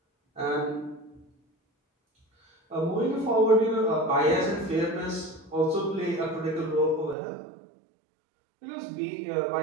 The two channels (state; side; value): drops out; left; at 7.2 s